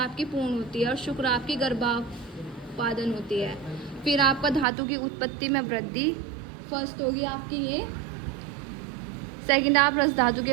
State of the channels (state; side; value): drops out; left; at 4.7 s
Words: आपकी पूर्ण होती है और शुक्र आपकी गर्भापादन होती है। फिर आपका धातु की उत्पत्ति में वृद्धि, फर्स्ट होगी आपकी ये। सेकंड आप रस धातु